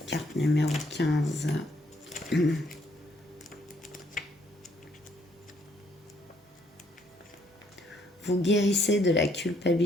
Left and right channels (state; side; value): normal; both; correlation 0.69